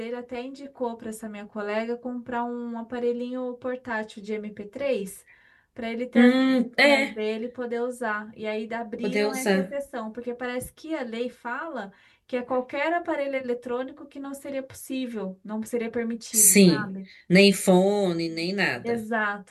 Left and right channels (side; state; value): both; identical; correlation 1.00